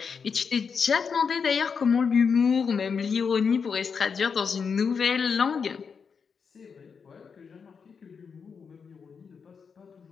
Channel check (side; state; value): right; quieter; 6.0 dB